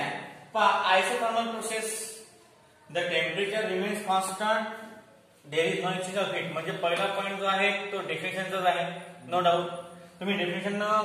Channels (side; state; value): both; identical; correlation 1.00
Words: isothermal process the temperature remains constant, there is no exchange of heat. म्हणजे पहिला पॉईंट जो आहे तो डेफिनेशनचाच आहे, नो डाऊट. तुम्ही डेफिनेशन